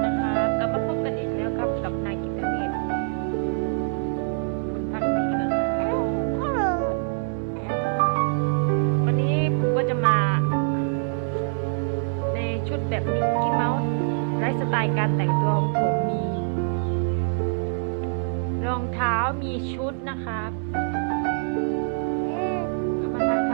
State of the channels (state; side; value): silent; left; digital silence